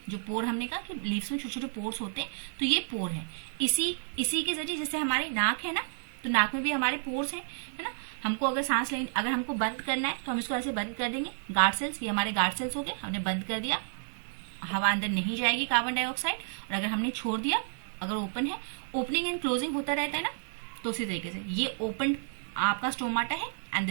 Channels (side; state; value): left; silent; digital silence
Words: जो पोर हमने कहा कि लीव्स में छोटे छोटे पोर्स होते हैं, तो ये पोर है। इसी के जरिए, जैसे हमारी नाक है ना, तो नाक में भी हमारे पोर्स हैं, है ना। हमको अगर सांस लेनी, अगर हमको बंद करना है तो हम इसको ऐसे बंद कर देंगे, गार्ड सेल्स, ये हमारे गार्ड सेल्स हो गए, हमने बंद कर दिया, हवा अंदर नहीं जाएगी कार्बन डाइऑक्साइड। और अगर हमने छोड़ दिया, अगर ओपन है, ओपनिंग एंड क्लोजिंग होता रहता है ना, तो उसी तरीके से ये ओपन आपका स्टोमाटा है and